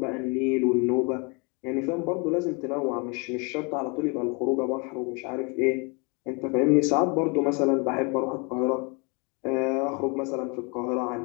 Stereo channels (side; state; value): right; quieter; 31.5 dB